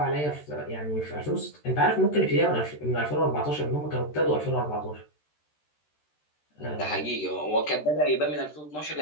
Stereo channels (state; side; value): late; right; 13 ms